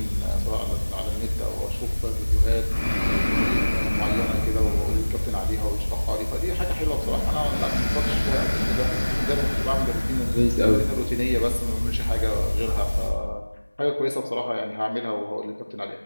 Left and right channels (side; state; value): both; inverted; correlation -1.00